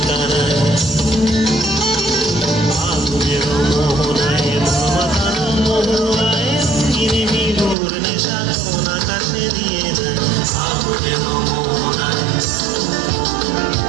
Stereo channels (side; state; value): left; drops out; at 7.8 s